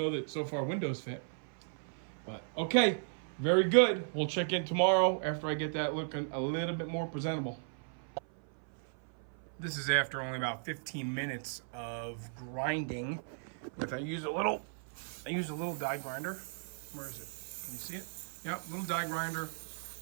that so far windows fit. But, okay, very good. We'll check in tomorrow after I get that looking a little bit more presentable. This is after only about 15 minutes of grinding I use a little die grinder. Where is it? Can you see it? Yep, little die grinder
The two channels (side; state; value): left; silent; 54 dB below the other